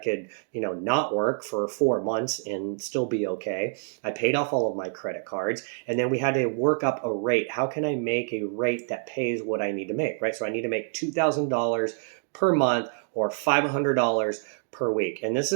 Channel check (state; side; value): silent; left; 56 dB below the other